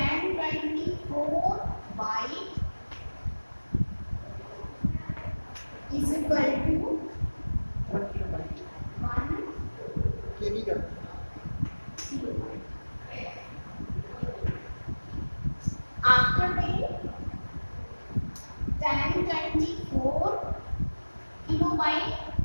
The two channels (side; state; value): both; inverted; correlation -1.00